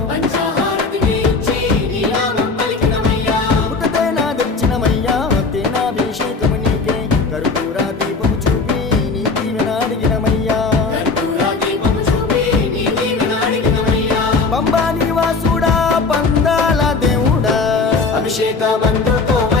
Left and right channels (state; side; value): quieter; right; 4.2 dB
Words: తేనాభిషేకము నీకే కర్పూర దీపము చూపి నీ దీవెన అడిగినమయ్యా, పంబా నివాసుడా పందాల దేవుడా